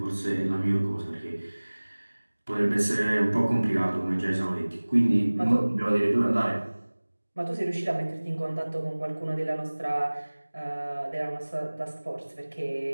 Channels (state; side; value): inverted; both; correlation -1.00